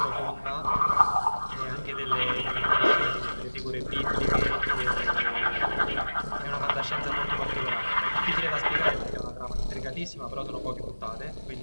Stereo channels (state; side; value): inverted; both; correlation -1.00